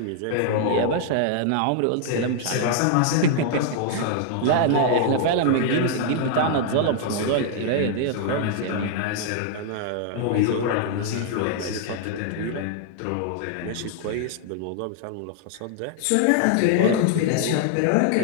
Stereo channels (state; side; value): different; both; correlation -0.01